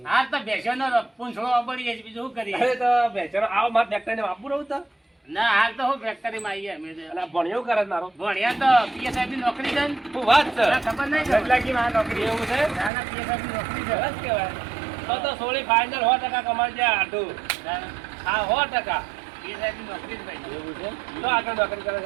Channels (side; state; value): left; drops out; at 12.9 s